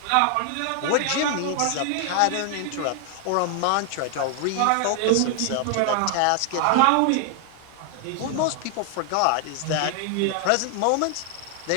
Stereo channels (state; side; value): different; both; correlation 0.00